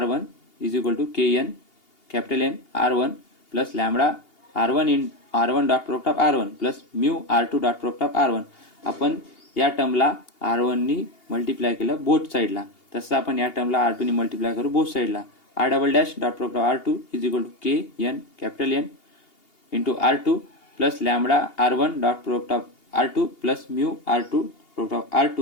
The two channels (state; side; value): late; right; 2.8 ms